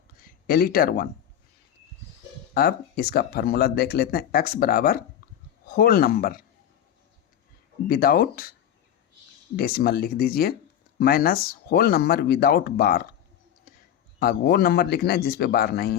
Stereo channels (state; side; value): quieter; right; 10.1 dB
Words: एलिटर 1, अब इसका फार्मूला देख लेते हैं, x बराबर होल नंबर विदाउट डेसिमल लिख दीजिए माइनस होल नंबर विदाउट बार, अब वो नंबर लिखना है जिस पे बार